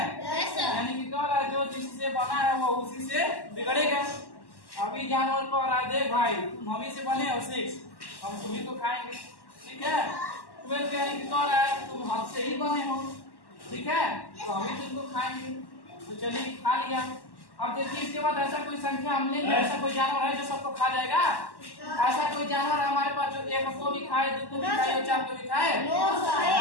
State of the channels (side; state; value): right; late; 1.1 ms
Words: यानी कि क्या है, जो जिससे बना है वो उसी से बिगड़ेगा। अभी जानवर को आ देख भाई, तुम हम ही से बने हो 6, हम तुम्ही को खाएंगे। ठीक है। 12 यानी कि क्या है, तुम हमसे ही बने हो। ठीक है, तो हम ही तुमको खाएंगे। तो चलिए खा लिया। अब देखिए इसके बाद ऐसा कोई संख्या हम लेंगे, ऐसा कोई जानवर है जो सबको खा जाएगा? ऐसा कोई जानवर है हमारे पास जो एक को भी खाए, दो को भी खाए और चार को भी खाए?